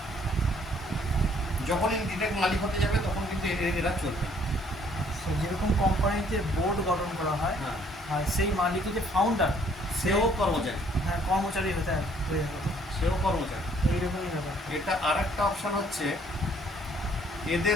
যখনই ডিরেক্ট মালিক হতে যাবে তখন কিন্তু এরা চলবে না। যেরকম কোম্পানিতে বোর্ড গঠন করা হয়, হ্যাঁ, আর সেই মালিকের যে ফাউন্ডার সেও কর্মচারী, হ্যাঁ কর্মচারী হয়ে যেত, সেও কর্মচারী। এইরকমই ব্যাপার। এটা আর একটা অপশান হচ্ছে,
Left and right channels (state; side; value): normal; both; correlation 0.62